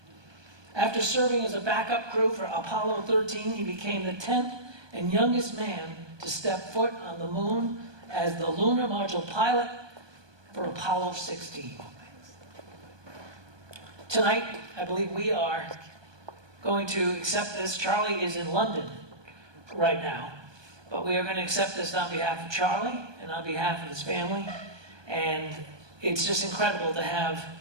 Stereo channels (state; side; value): late; left; 1.2 ms